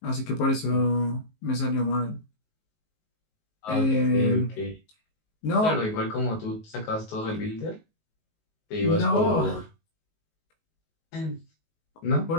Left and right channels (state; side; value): late; right; 19 ms